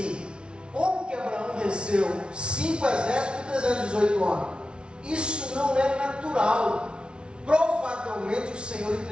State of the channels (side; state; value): left; late; 0.057 ms